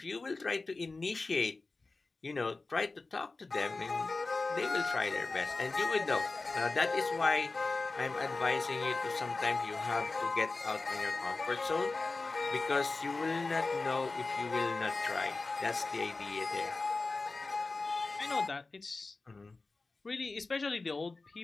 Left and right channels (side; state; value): right; quieter; 3.6 dB